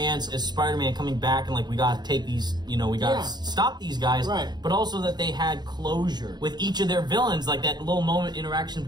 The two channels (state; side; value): late; left; 0.20 ms